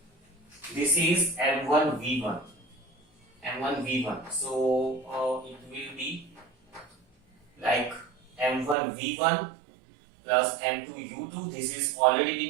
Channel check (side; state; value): left; drops out; at 8.8 s